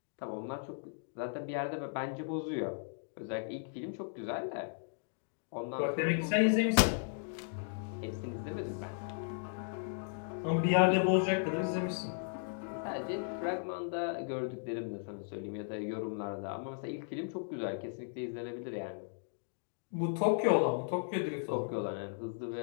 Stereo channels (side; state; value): right; silent; digital silence